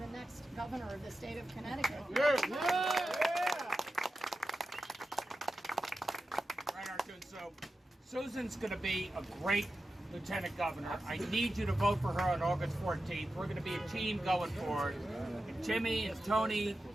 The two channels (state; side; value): normal; both; correlation 0.92